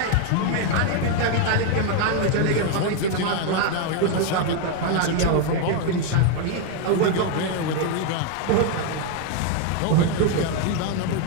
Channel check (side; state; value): both; different; correlation 0.00